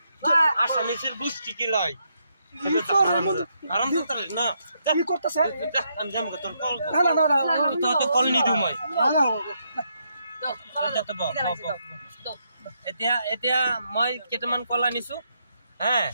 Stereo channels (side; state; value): both; inverted; correlation -0.77